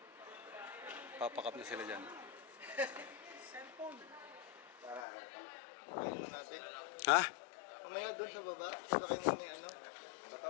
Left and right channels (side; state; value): right; drops out; at 5.1 s